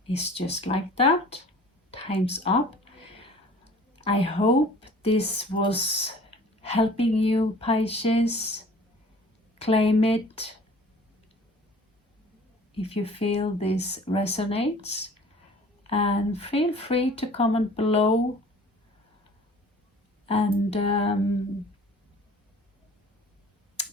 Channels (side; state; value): both; normal; correlation 0.48